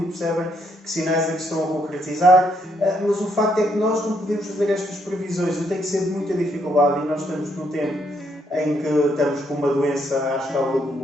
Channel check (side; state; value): both; normal; correlation 0.73